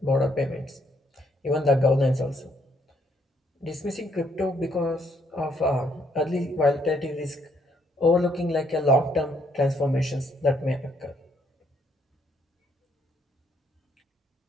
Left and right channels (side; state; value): both; normal; correlation 0.71